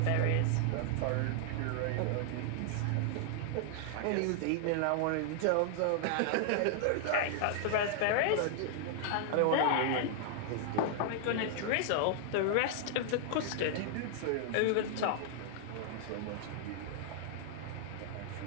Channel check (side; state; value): both; different; correlation -0.01